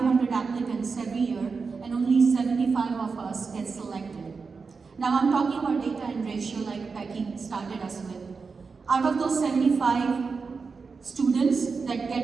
applicants every year, and only 75 of us get selected. Now I'm talking about data and ratio like Becky started us with. Out of those 75 students that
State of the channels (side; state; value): left; quieter; 4.8 dB